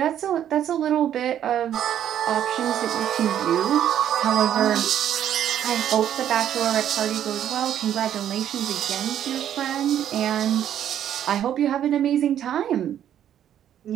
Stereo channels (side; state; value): left; quieter; 10.4 dB